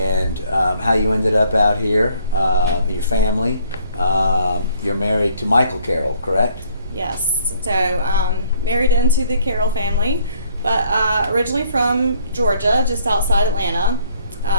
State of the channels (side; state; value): both; inverted; correlation -0.62